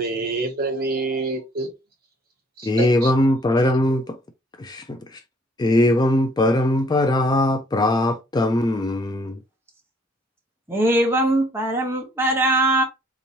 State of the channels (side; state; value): both; normal; correlation 0.62